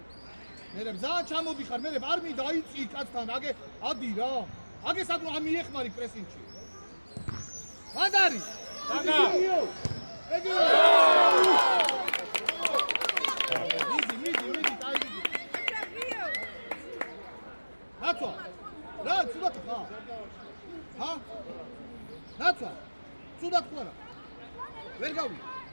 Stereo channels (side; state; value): both; inverted; correlation -1.00